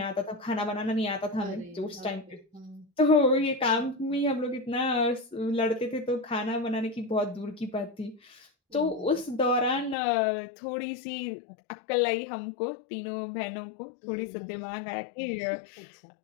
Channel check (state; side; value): drops out; right; at 10.0 s